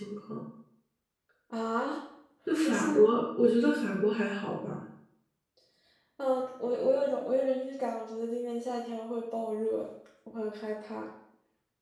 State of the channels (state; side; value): identical; both; correlation 1.00